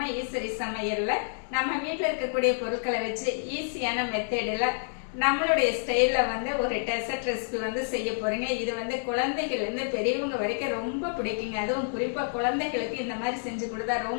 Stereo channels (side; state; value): right; silent; digital silence